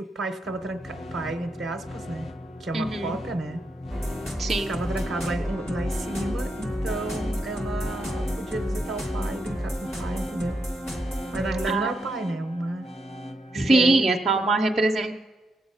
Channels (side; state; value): both; normal; correlation 0.82